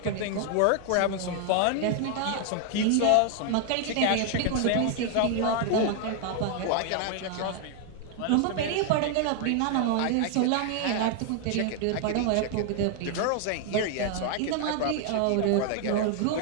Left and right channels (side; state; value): both; different; correlation 0.00